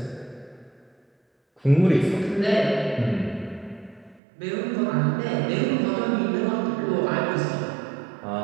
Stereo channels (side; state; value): left; drops out; at 4.2 s